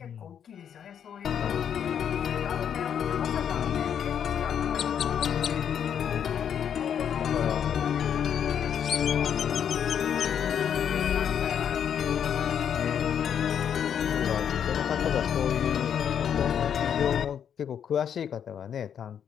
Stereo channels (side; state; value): right; quieter; 8.5 dB